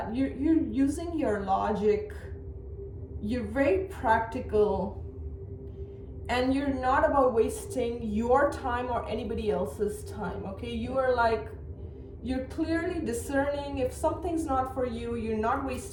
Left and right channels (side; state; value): both; identical; correlation 1.00